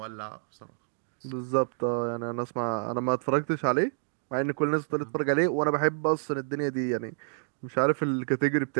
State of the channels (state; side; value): silent; left; 59 dB below the other